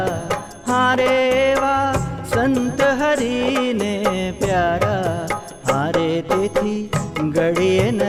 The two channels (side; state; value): both; identical; correlation 1.00